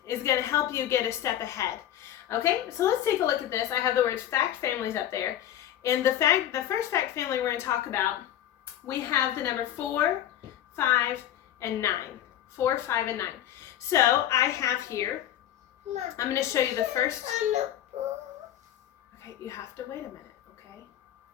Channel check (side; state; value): right; quieter; 11.6 dB